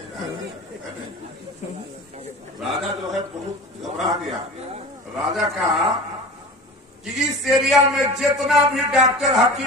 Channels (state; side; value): normal; both; correlation 0.35